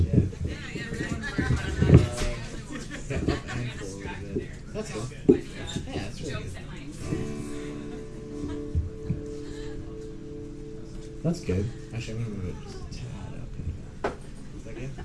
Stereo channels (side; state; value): both; identical; correlation 1.00